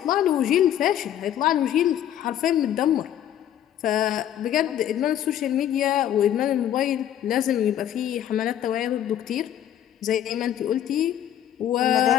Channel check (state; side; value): quieter; right; 10.9 dB